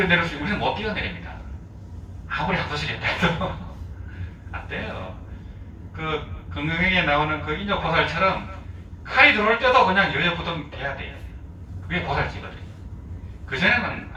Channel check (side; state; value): both; identical; correlation 1.00